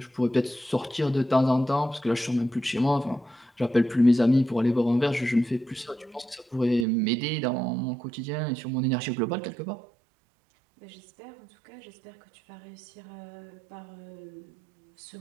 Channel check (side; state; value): left; drops out; at 6.9 s